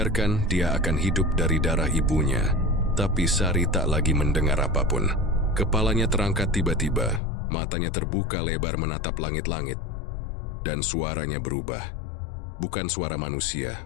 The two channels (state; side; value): drops out; right; at 7.2 s